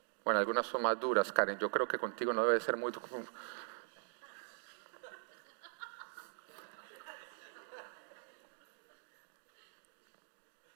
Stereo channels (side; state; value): left; silent; digital silence